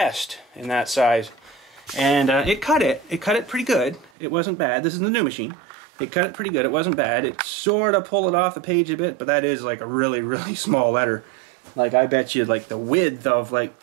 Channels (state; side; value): drops out; left; at 4.1 s